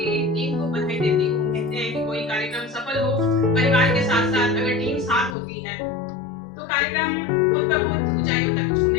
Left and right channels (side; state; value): right; drops out; at 5.4 s